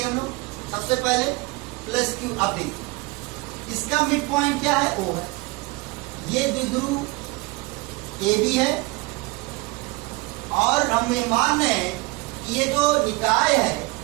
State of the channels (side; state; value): left; quieter; 23.5 dB